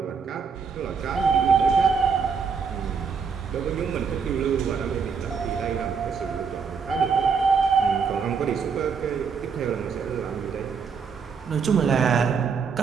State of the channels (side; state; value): left; quieter; 5.9 dB